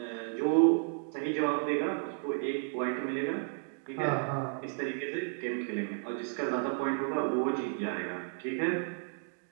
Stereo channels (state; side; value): silent; left; 56 dB below the other